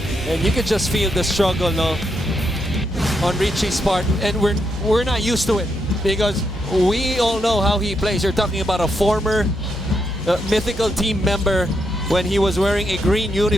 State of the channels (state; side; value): normal; both; correlation 0.80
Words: And you could just feel the struggle, no, on Richie's part, and we're not used to it because we all know how he plays. You're talking about a former mythical team member when he was wearing a green